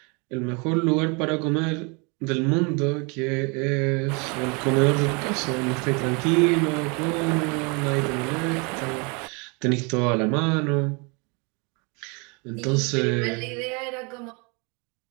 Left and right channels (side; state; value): left; quieter; 31.4 dB